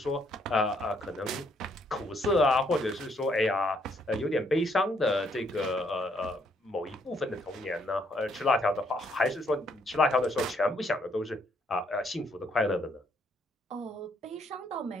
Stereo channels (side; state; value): both; normal; correlation 0.70